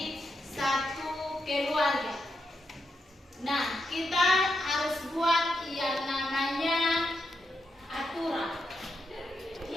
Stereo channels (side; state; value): both; normal; correlation 0.83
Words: satu keluarga. Nah, kita harus buat yang namanya aturan.